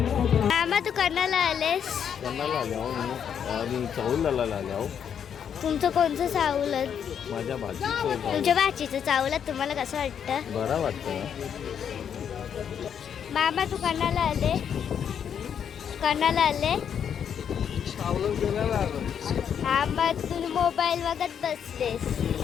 मामा तू कर्नाला आलेस? आणि चावलाला आल्या. तुमचं कोणतं चावलं? माझ्या भाजीचं तुमच्या भाचीचं चावलं. तुम्हाला कसं वाटतं? बरं वाटतं. मामा तू कर्नाला आले? कर्नाला आले? हा मग तुम्ही मोबाईल बघत बसलेस.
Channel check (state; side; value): quieter; right; 8.2 dB